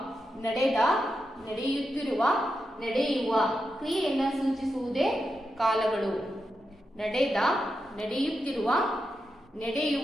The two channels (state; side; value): normal; both; correlation 0.87